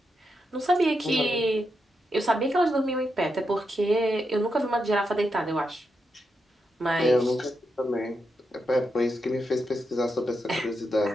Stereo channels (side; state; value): both; normal; correlation 0.84